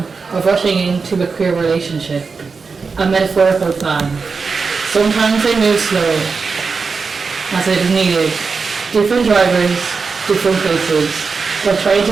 of rushing into a queer relationship, a metaphorical fan. Sometimes they move slow, as it is needed. Different drivers, different places, but trying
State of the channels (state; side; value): quieter; left; 4.8 dB